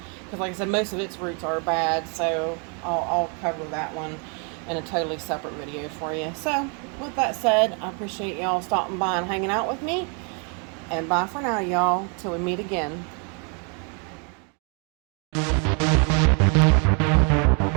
because like I said, most of its roots are bad, so I'll cover that one in a totally separate video for you. So, with that said, I appreciate y'all stopping by and hanging out with me. And bye for now, y'all, till we meet again.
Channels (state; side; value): quieter; left; 37.1 dB